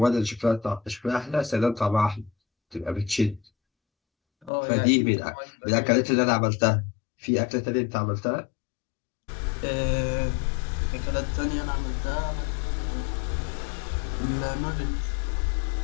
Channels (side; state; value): right; drops out; at 4.5 s